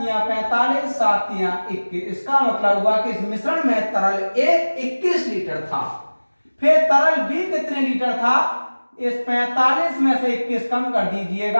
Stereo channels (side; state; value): both; inverted; correlation -1.00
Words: 45, 7 तिया 21। इसका मतलब हुआ कि इस मिश्रण में तरल A 21 लीटर था। फिर तरल B कितने लीटर था? इस 45 में से 21 कम कर